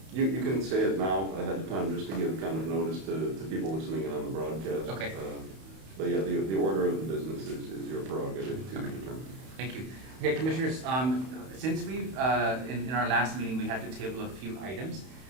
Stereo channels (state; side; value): late; left; 31 ms